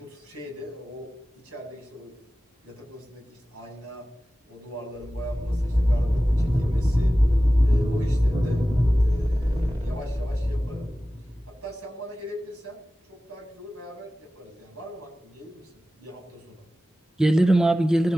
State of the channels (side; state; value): both; normal; correlation 0.96